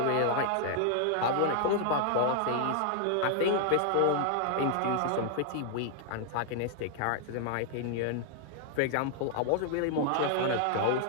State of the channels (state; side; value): different; both; correlation 0.00